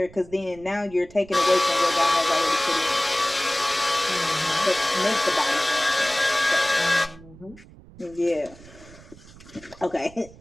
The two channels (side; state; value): right; noise; rumble, 21 dB below the sound